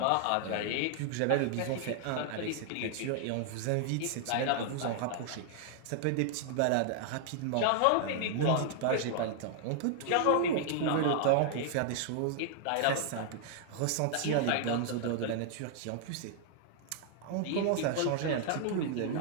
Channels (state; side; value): different; both; correlation -0.01